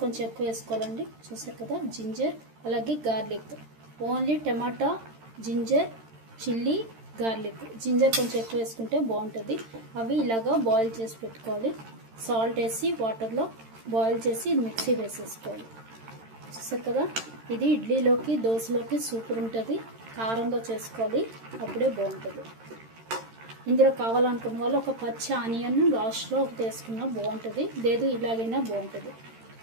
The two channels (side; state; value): left; late; 13 ms